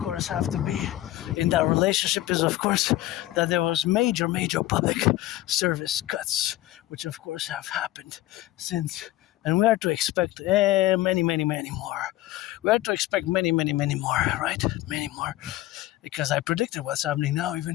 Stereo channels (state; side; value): quieter; right; 15.6 dB